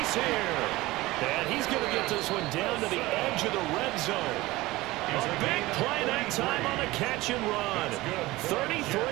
here. And he's going to get this one down to the edge of the red zone. A big play that time on a catch and run.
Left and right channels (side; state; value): left; quieter; 19.3 dB